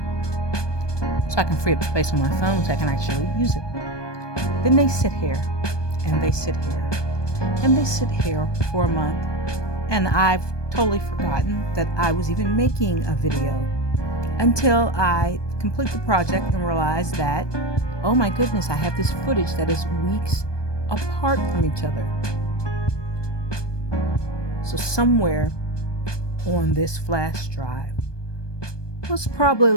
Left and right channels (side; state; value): right; late; 1.2 ms